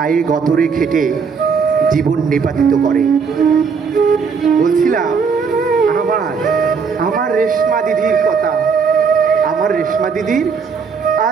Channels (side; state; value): left; quieter; 5.7 dB